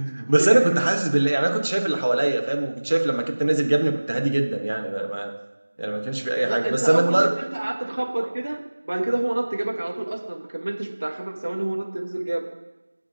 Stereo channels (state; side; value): inverted; both; correlation -1.00